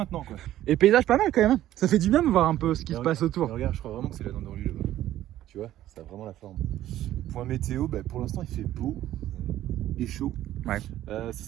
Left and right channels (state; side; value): quieter; left; 13.3 dB